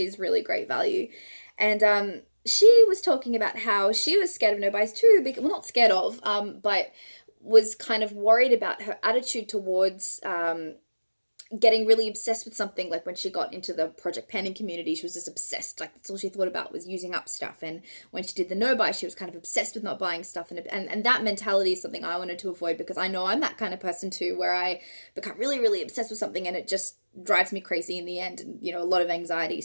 really great value, and she was talking about how she was scared of no buys too. Well, not scared of, but was kind of worried about her attitude towards getting really obsessed with something. Like when she got into the project panning community, she was just obsessed. Like that's all she thought about was using up stuff. And when she did the no buy, she was kind of obsessed with not buying stuff. And that mentality is something I wanted to avoid, because I know I'm that kind of person too, where I become really, really obsessed with something and it just drives me crazy in the end, and a lot of anxiety.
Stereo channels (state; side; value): inverted; both; correlation -1.00